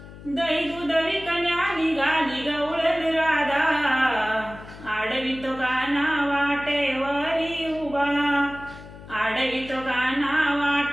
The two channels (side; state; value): left; noise; hum, 17 dB below the sound